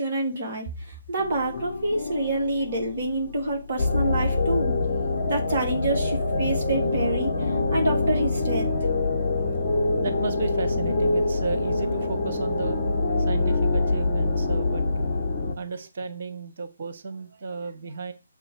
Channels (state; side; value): inverted; both; correlation -0.78